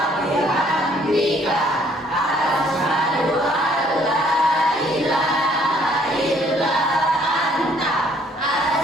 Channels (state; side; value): normal; both; correlation 0.62